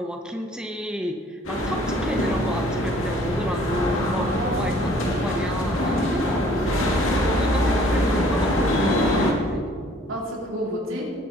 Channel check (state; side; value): normal; both; correlation 0.56